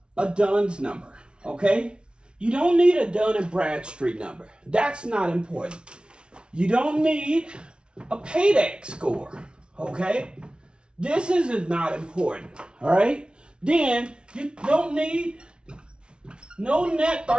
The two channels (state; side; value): late; left; 0.056 ms